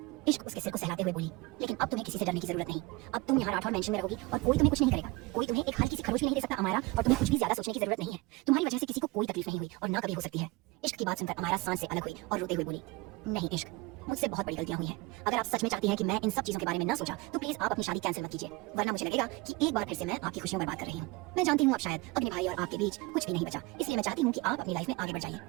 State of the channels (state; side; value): quieter; left; 23.8 dB